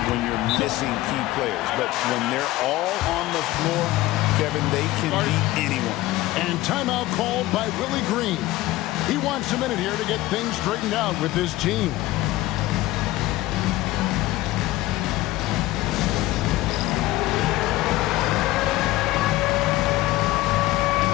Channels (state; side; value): quieter; right; 17.3 dB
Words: when you're missing key players. But when they're all on the floor, Kevin, they can beat anyone. And timeout called by Willie Green. He wants a minute here to get things straightened out with his team.